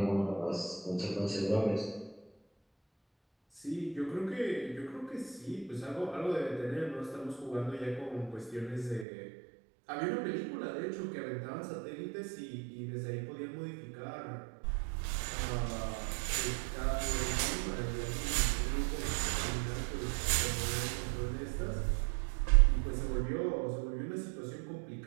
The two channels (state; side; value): drops out; left; at 9.1 s